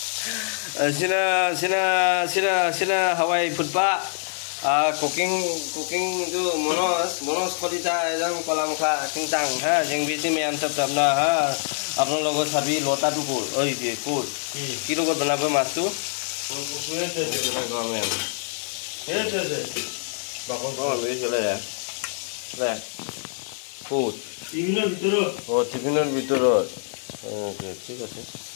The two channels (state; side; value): silent; right; digital silence